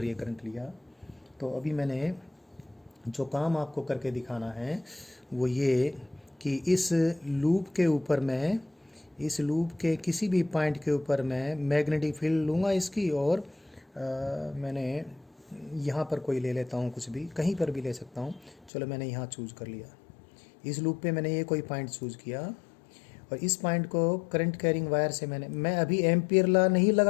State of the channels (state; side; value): drops out; right; at 18.7 s